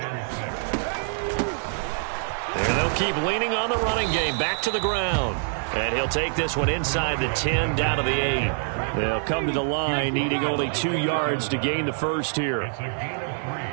And they'll keep leaning on the running game. Back to the ground. And he'll take this one inside the 10, down to the 8. They'll come to the line, needing only 2 yards to gain the first here.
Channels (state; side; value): silent; left; 62 dB below the other